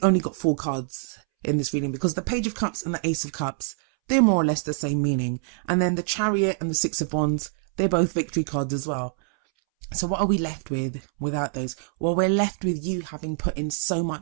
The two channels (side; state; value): left; silent; 62 dB below the other